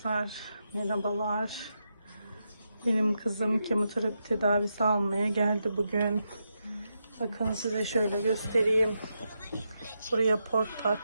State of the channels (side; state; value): both; inverted; correlation -0.85